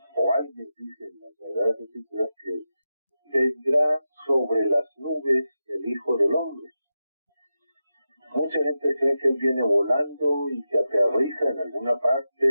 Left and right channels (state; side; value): inverted; both; correlation -0.90